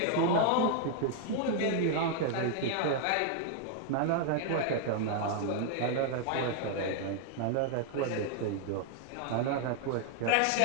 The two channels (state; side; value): different; both; correlation 0.00